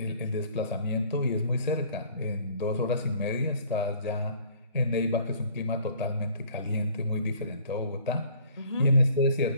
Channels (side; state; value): both; inverted; correlation -0.55